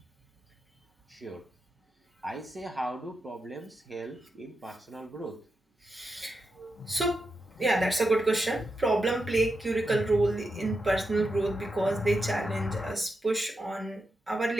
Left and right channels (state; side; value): normal; both; correlation 0.87